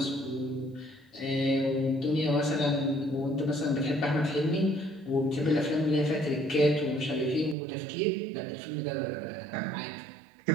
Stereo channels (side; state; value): left; drops out; at 7.6 s